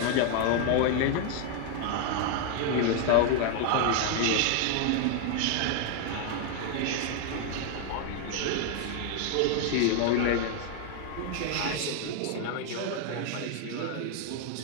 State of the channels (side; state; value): both; different; correlation 0.00